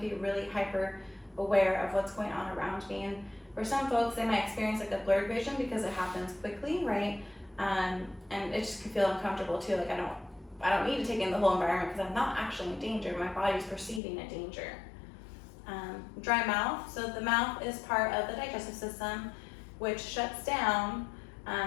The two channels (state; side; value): drops out; right; at 14.0 s